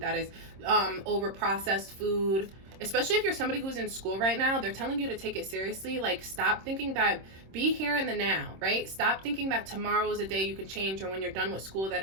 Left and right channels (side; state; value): left; late; 26 ms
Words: is over processed food. Especially if you're somebody who's in school right now, they're telling you to take it seriously. Like, stop thinking that, be here in the now, right? Stop thinking that tomorrow is a day you can change, or when you're done with school